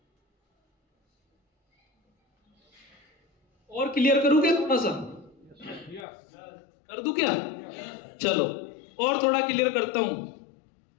और क्लियर करूं क्या थोड़ा सा? कर दूं क्या? चलो और थोड़ा क्लियर करता हूं,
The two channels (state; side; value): drops out; right; at 6.1 s